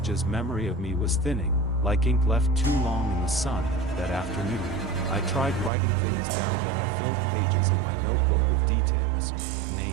memory of me was thinning, like ink left too long in the sun. That afternoon, I tried writing things down. I filled pages in my notebook with details,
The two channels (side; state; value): left; drops out; at 5.7 s